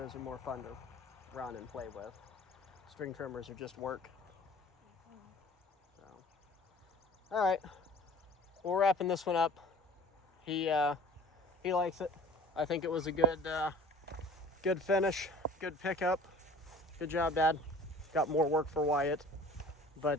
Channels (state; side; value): normal; both; correlation 0.45